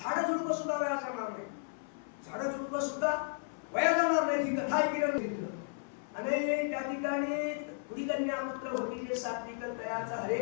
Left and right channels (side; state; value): right; silent; 55 dB below the other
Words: झाडं झुडपं सुद्धा वाया जाणार नाही. झाडं झुडपं सुद्धा वाया जाणार नाही ही कथा ऐकण्याने घेतलं. आणि त्या ठिकाणी पुढी कन्या पुत्र होती जे सात्विक तयाचा